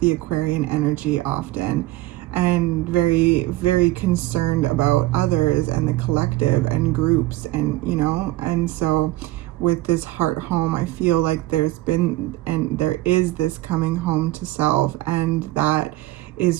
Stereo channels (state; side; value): quieter; left; 17.7 dB